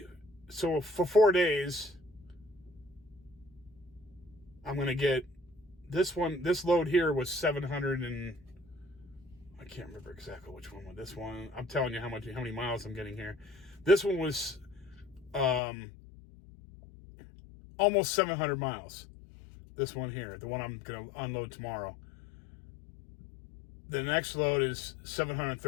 So for 4 days, I'm going to get this load here was 700 and I can't remember exactly which one was this one. I'm telling you how many miles I'm getting here. This one was almost 700 miles. This one here, the one I'm going to unload tomorrow. The next load is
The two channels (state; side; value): drops out; right; at 15.6 s